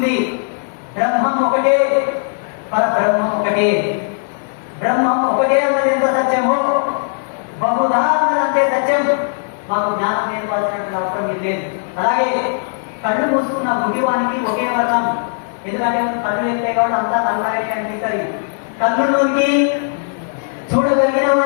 బ్రహ్మం ఒకటే, పరబ్రహ్మం ఒకటే. బ్రహ్మం ఒకటే అన్నది ఎంత సత్యమో బహుధా అన్నది అంతే సత్యం. మాకు జ్ఞానం నేర్పాల్సినటువంటి అవసరం మీరు లేదు. అలాగే కళ్ళు మూసుకున్న గుడ్డివానికి ఒకే వర్ణం. ఎందుకంటే కళ్ళు వెళ్తే కాబట్టి అంతా నల్లగా అనిపిస్తుంది. కళ్ళులోనికి చూడగలిగిన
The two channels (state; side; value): silent; right; 62 dB below the other